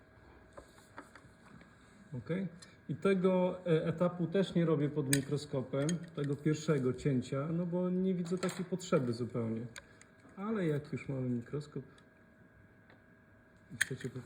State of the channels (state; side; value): identical; both; correlation 1.00